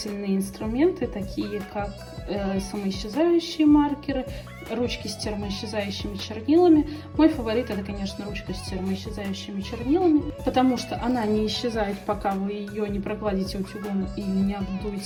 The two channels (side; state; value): both; identical; correlation 1.00